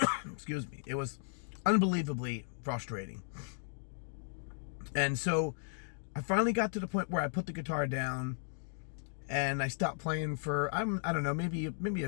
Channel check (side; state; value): right; silent; digital silence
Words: excuse me, it was unbelievably frustrating. And so I finally got to the point where I put the guitar down and I stopped playing for, I don't know, maybe